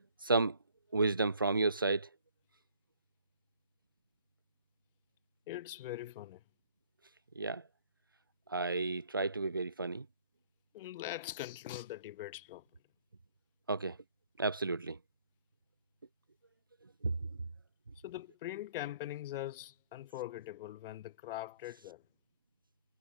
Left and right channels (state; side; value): inverted; both; correlation -0.61